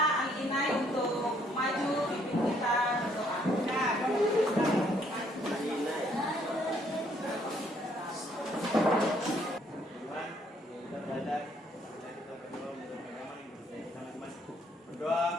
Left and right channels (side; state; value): both; normal; correlation 0.67